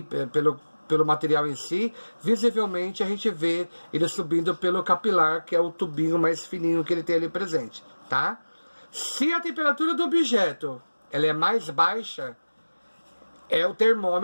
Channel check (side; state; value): both; inverted; correlation -1.00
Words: pelo material em si, visivelmente a gente vê ele subindo pelo capilar, que é o tubinho mais fininho que ele tem ali presente, tá? Se a temperatura do objeto ela é mais baixa, é o